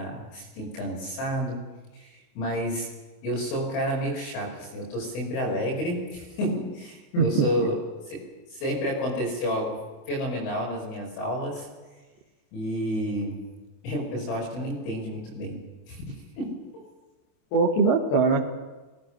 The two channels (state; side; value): late; right; 28 ms